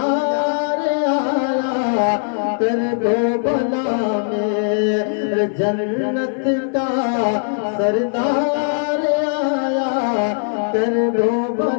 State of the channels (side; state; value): right; silent; digital silence